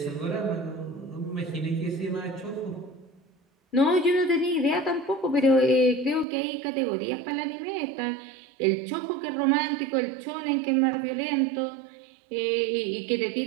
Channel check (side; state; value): left; drops out; at 6.2 s